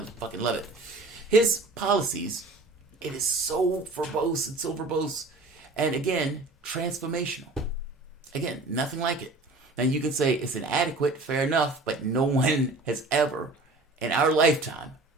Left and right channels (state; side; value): quieter; left; 3.2 dB